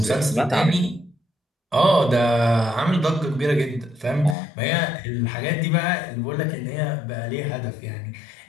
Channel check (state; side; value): drops out; right; at 4.4 s